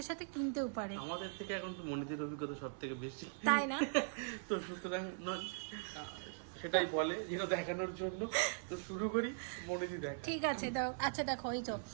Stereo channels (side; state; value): left; silent; 51 dB below the other